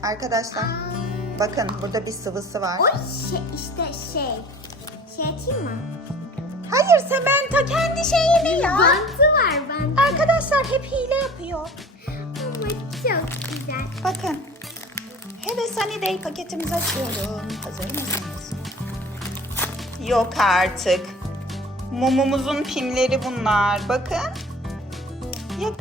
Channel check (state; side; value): normal; both; correlation 0.43